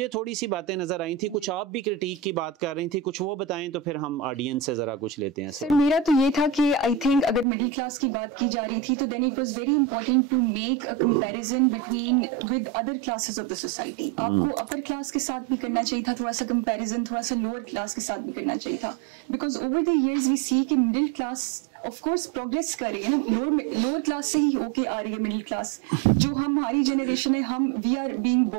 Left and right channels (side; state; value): left; drops out; at 7.5 s